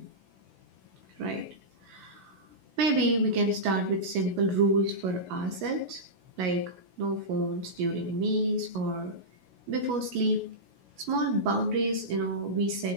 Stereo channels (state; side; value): late; left; 16 ms